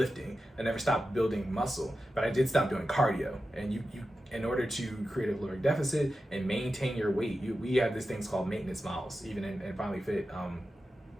I never stopped building muscle, but I did stop doing cardio. And you in order to create a caloric deficit and maintain your weight, we have these things called maintenance miles, even in FinallyFit,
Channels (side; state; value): both; normal; correlation 0.92